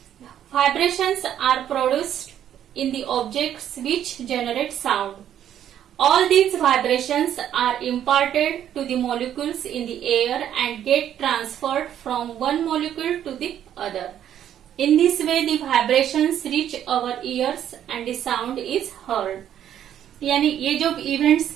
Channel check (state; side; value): quieter; left; 10.4 dB